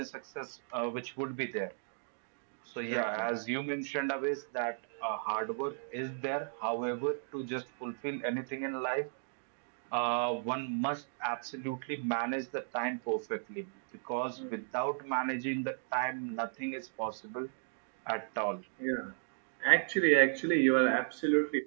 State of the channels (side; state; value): left; silent; digital silence